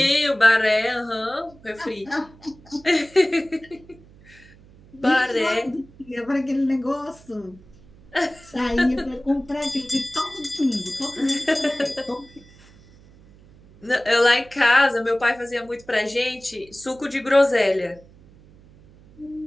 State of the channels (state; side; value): noise; right; hum, 25 dB below the sound